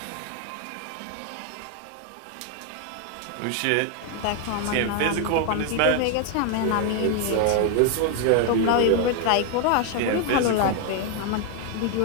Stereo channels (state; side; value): different; both; correlation 0.01